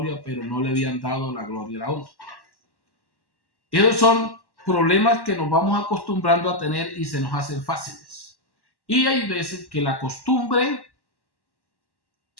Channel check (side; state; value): right; late; 1.1 ms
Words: pero no le habían dado la gloria y la honra. Esos son problemas que nos vamos acostumbrando a tener y se nos hacen fáciles. Y hay veces que la costumbre